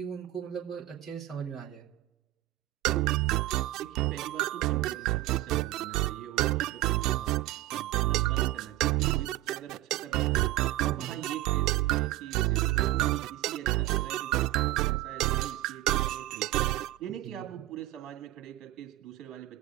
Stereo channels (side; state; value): left; quieter; 15.7 dB